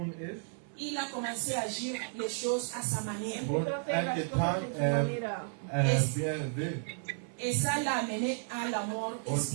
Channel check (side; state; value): left; silent; 56 dB below the other